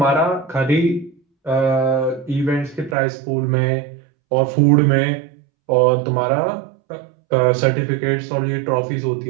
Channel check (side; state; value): left; drops out; at 3.0 s